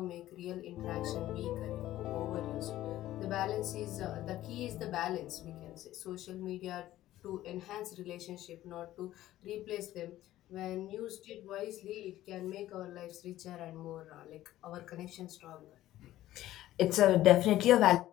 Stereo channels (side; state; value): right; quieter; 14.4 dB